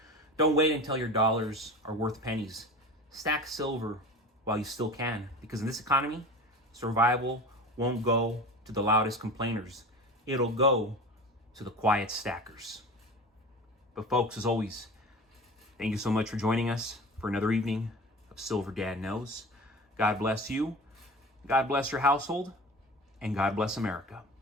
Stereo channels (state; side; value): normal; both; correlation 0.34